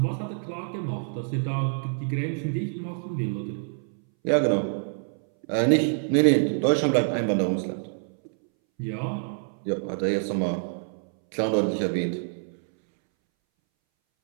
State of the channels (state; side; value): silent; left; 61 dB below the other